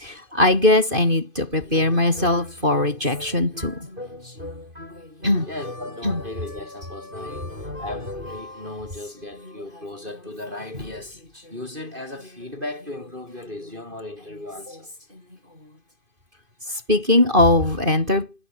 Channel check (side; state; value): left; late; 2.5 ms